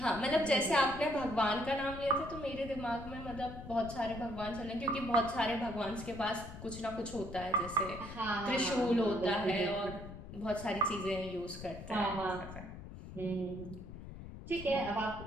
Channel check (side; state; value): left; noise; rumble, 12 dB below the sound